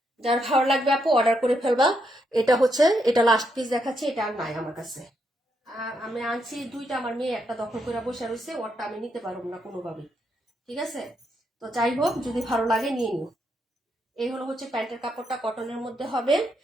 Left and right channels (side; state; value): both; normal; correlation 0.79